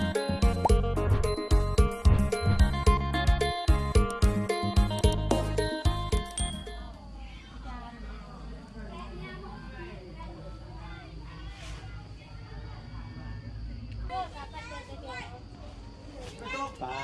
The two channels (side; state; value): both; identical; correlation 1.00